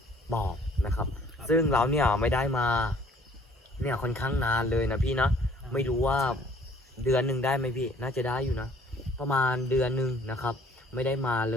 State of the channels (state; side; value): normal; both; correlation 0.57